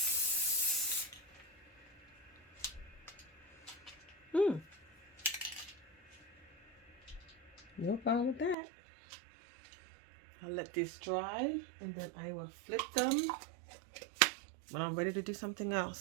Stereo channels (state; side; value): drops out; left; at 8.6 s